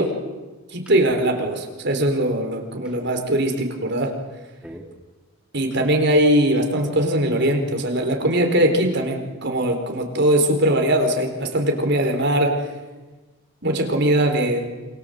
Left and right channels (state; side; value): normal; both; correlation 0.09